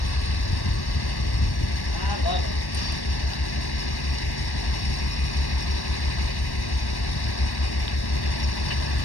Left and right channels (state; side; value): late; right; 1.1 ms